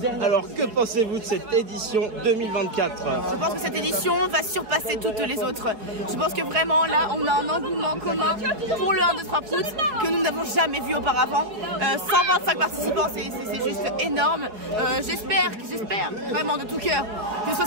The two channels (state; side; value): late; left; 4.8 ms